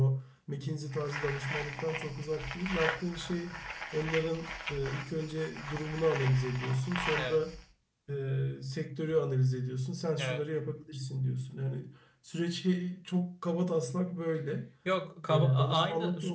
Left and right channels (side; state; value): both; identical; correlation 1.00